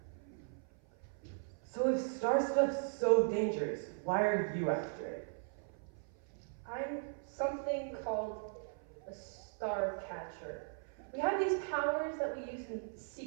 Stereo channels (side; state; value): left; silent; 52 dB below the other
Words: So if star stuff's so dangerous, why are you after it? I'm something called a Starcatcher. We have these powers that we use in